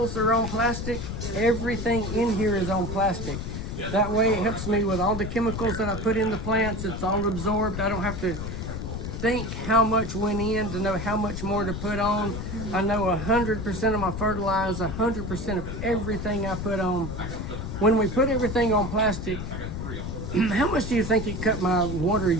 are on plastic, everything in here is on plastic. That way it helps me with all the chemicals that I put in the plants. It's all absorbed. I don't have to think how much went in to know how much more to put on. I know 100% of my fertilizer, 100% of everything I put on. When we put everything on plastic, how much do you think it cut my water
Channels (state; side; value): noise; left; rumble, 5 dB below the sound